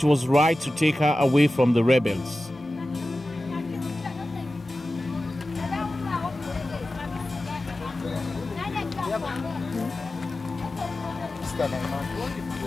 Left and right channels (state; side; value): normal; both; correlation 0.95